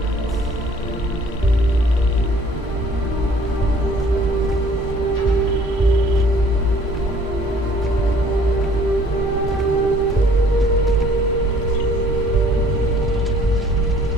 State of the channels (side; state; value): both; normal; correlation 0.56